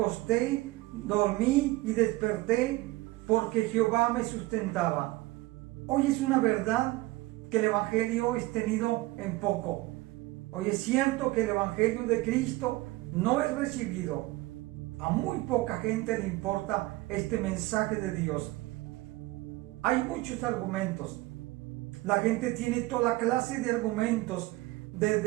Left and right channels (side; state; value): left; quieter; 19.6 dB